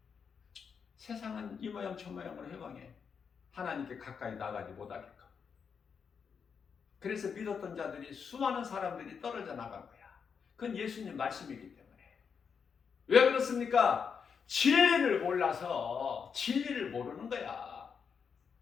세상은 이 모양 저 모양으로 해방해. 하나님께 가까이 나가지 못하게끔. 그래서 믿었던 자들이, 수많은 사람들이 떨어져 나간 거야. 그건 예수님 말씀이기 때문에. 왜 그렇습니까? 진리를 몰라서. 진리를 모르는 거야.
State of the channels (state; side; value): quieter; right; 6.4 dB